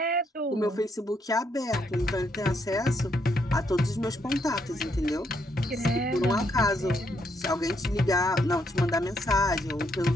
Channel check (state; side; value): normal; both; correlation 0.75